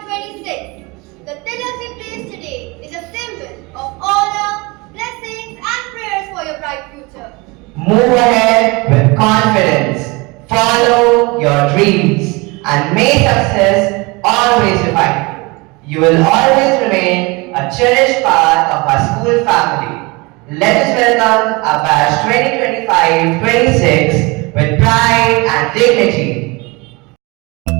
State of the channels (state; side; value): quieter; left; 25.8 dB